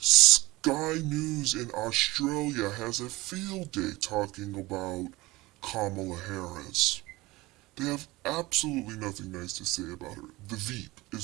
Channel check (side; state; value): left; quieter; 20.5 dB